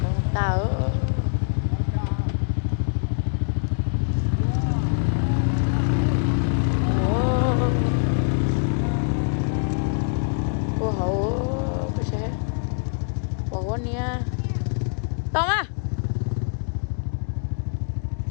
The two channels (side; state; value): right; silent; digital silence